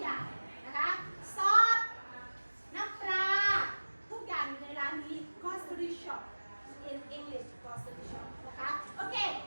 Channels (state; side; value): inverted; both; correlation -1.00